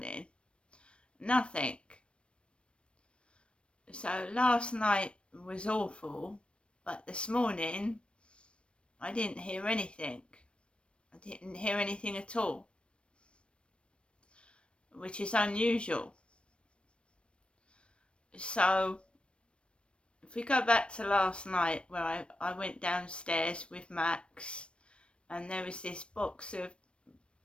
Nothing. So last night was awful, but this morning I didn't hear anything. I didn't hear anything at all, which is unusual. So if we go back to last night, where I went downstairs with Max and there was this box of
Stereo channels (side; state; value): right; late; 0.058 ms